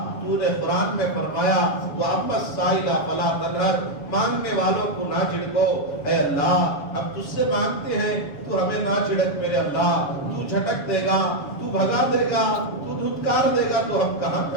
تو نے قرآن میں فرمایا وَأَمَّا السَّائِلَ فَلَا تَنْهَرْ، مانگنے والوں کو نہ جھڑکو۔ اے اللہ ہم تجھ سے مانگتے ہیں تو ہمیں نہ جھڑک میرے اللہ، تو جھٹک دے گا، تو بھگا دے گا، تو دھتکار دے گا تو ہم کہاں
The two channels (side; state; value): right; late; 7.3 ms